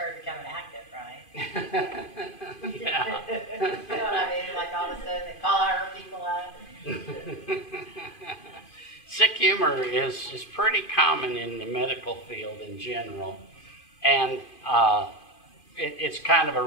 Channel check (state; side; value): late; right; 2.5 ms